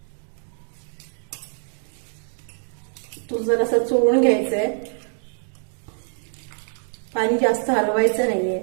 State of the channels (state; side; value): silent; left; digital silence